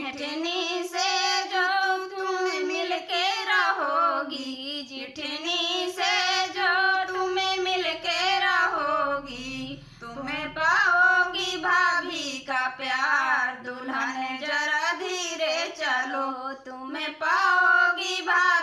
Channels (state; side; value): identical; both; correlation 1.00